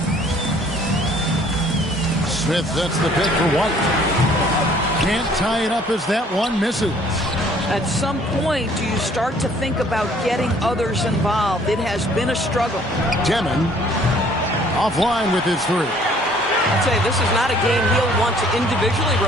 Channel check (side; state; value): both; normal; correlation 0.58